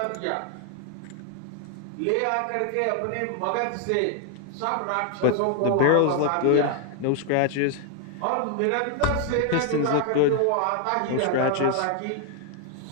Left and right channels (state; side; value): different; both; correlation 0.00